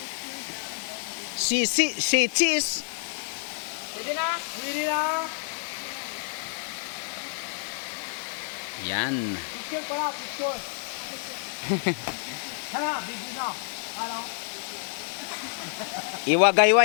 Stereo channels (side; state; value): right; silent; 58 dB below the other